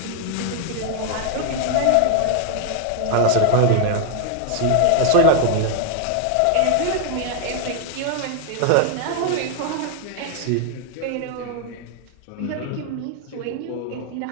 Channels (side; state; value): both; different; correlation 0.00